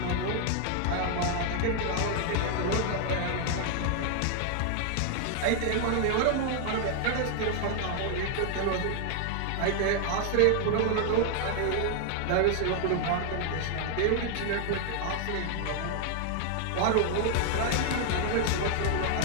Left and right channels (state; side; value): different; both; correlation 0.00